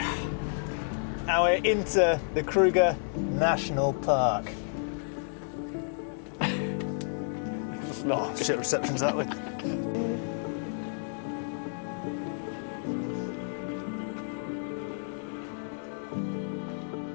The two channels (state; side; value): silent; right; digital silence